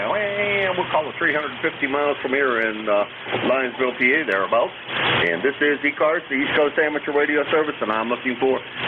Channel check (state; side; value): identical; both; correlation 1.00